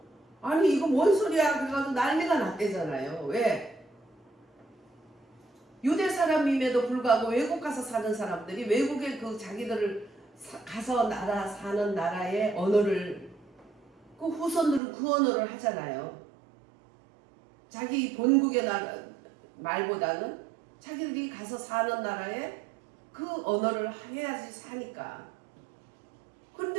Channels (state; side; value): drops out; left; at 14.8 s